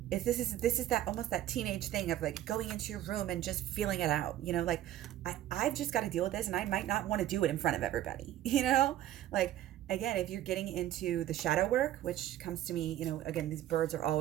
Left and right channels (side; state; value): left; quieter; 13.0 dB